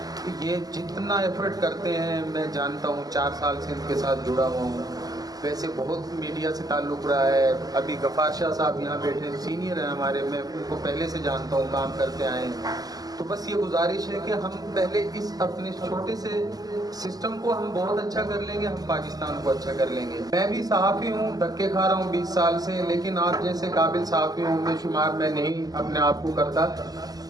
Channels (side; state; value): left; late; 0.18 ms